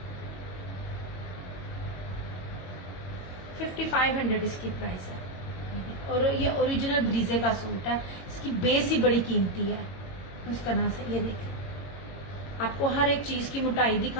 5500 इसकी प्राइस है। और ये ओरिजिनल ब्रीजे का सूट है, इसकी बेस ही बड़ी कीमती है। इस तरह से ये देखिए, आपको हर एक चीज की मोटाई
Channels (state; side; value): late; right; 22 ms